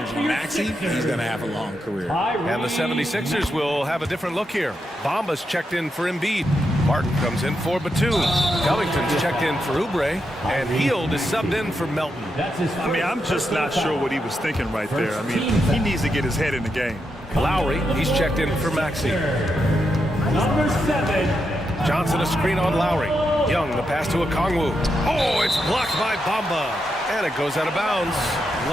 Maxey, he's going to have a long career. And the 76ers will have a different look here. Bamba's checked in for Embiid. Martin comes in for Batum. Covington's checked in for Oubre. And Hield is subbed in for Melton. I mean, I'm just not sure what he was thinking right there. I mean, he needs to get his head in the game. Lowry, he's checked in for Maxey. Number 7. Johnson a screen on Lowry. Young, the pass to Okongwu. Oh, it's blocked by Bamba. And it goes out of bounds.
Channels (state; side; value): normal; both; correlation 0.84